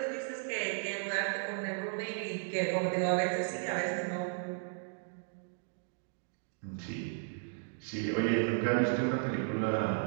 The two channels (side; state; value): left; silent; digital silence